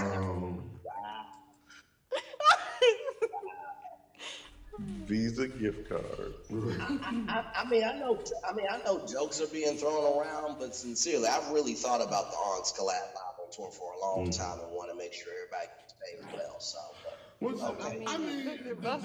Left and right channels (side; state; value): both; identical; correlation 1.00